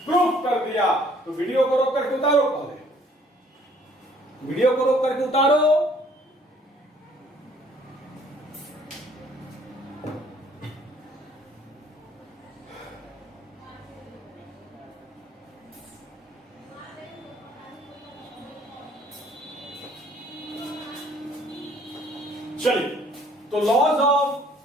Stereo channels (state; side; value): normal; both; correlation 0.59